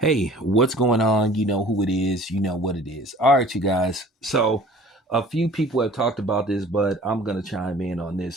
what's going on? You know who it is. You know what it is. All right, you guys. So, a few people have talked about this, but I'm going to chime in on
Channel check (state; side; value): normal; both; correlation 0.48